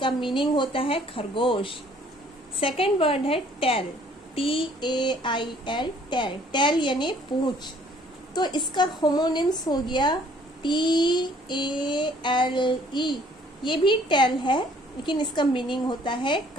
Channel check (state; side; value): normal; both; correlation 0.59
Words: मीनिंग होता है खरगोश। सेकेंड वर्ड है टेल, TAIL, टेल। टेल यानी पूंछ, तो इसका होमोनिम्स हो गया TALE, ये भी टेल है, लेकिन इसका मीनिंग होता है